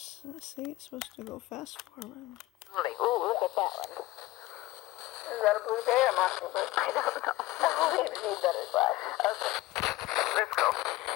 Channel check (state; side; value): quieter; right; 17.9 dB